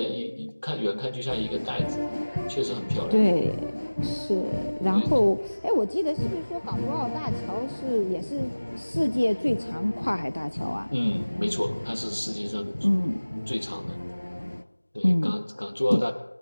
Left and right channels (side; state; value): both; inverted; correlation -1.00